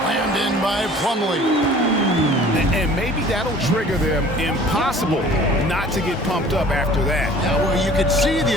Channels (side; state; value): both; normal; correlation 0.49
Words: in by Plumlee. And maybe that'll trigger them. Impossible not to get pumped up after that. Yeah, well, you could see the